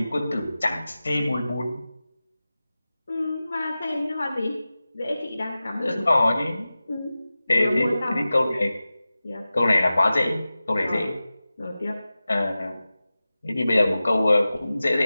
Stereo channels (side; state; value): both; inverted; correlation -0.95